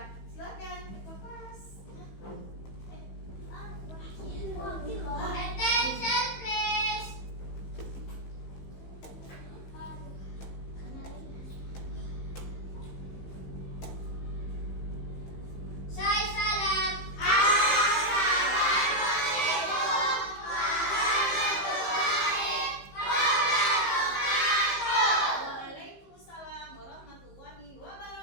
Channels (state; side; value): late; right; 15 ms